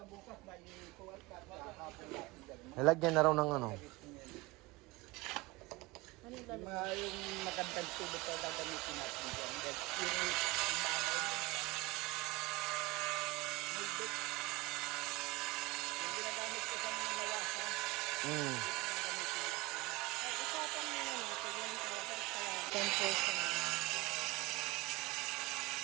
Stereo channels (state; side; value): quieter; left; 22.3 dB